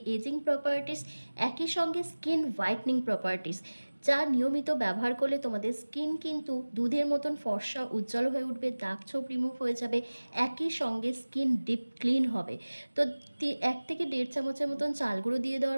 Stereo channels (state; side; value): inverted; both; correlation -1.00